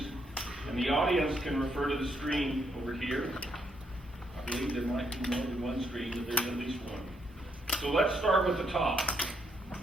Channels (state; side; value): normal; both; correlation 0.75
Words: and the audience can refer to the screen over here. I believe there might be more than one screen, but there's at least one. So let's start with the top.